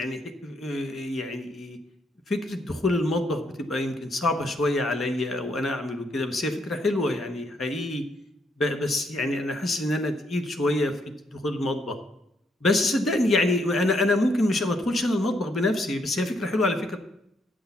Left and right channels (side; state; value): both; normal; correlation 0.74